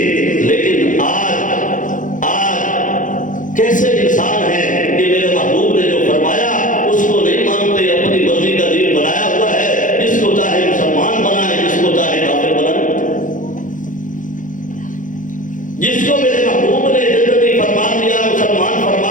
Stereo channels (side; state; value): right; late; 0.38 ms